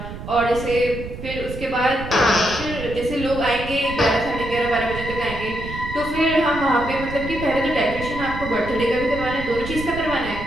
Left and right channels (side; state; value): right; noise; rumble, 9 dB below the sound